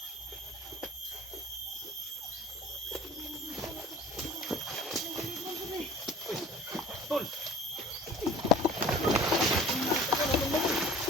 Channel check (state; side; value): normal; both; correlation 0.45